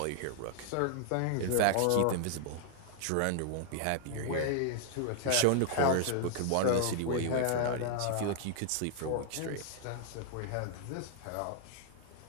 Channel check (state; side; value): different; both; correlation 0.00